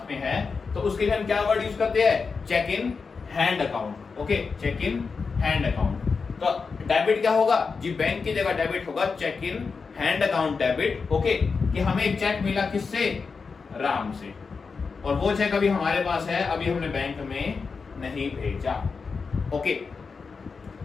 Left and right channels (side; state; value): right; quieter; 5.0 dB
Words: में है, तो उसके लिए हम क्या वर्ड यूज करते हैं, cheque in hand account. Okay, cheque in hand account. तो डेबिट क्या होगा जी, बैंक की जगह डेबिट होगा cheque in hand account debit. Okay, कि हमें एक चेक मिला किससे, राम से, और वो चेक अभी हमारे पास है, अभी हमने बैंक में नहीं भेजा। ओके,